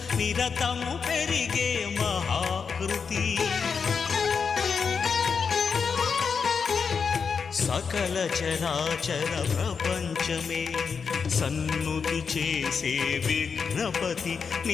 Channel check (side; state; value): right; quieter; 5.9 dB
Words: నిరతము పెరిగే మహాకృతి సకల చరాచర ప్రపంచమే సన్నుతి చేసే విఘ్నపతి